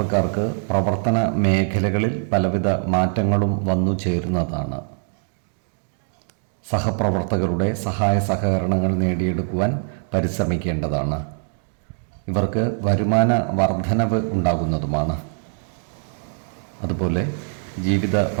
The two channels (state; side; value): silent; left; 64 dB below the other